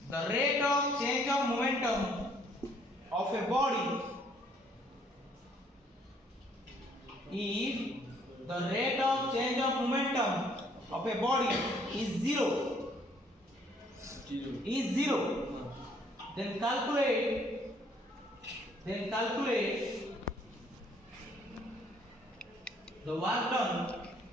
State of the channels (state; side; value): normal; both; correlation 0.64